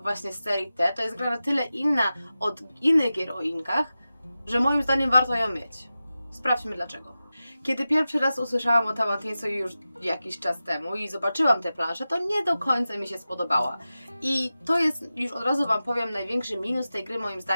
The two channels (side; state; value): both; inverted; correlation -0.94